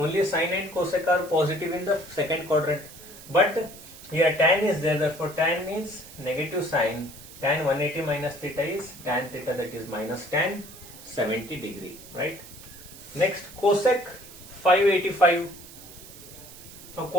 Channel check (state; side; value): noise; right; hiss, 17 dB below the sound